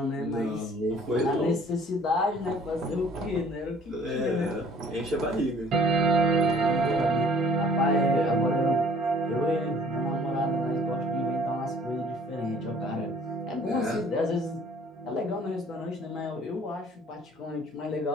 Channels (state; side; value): normal; both; correlation 0.55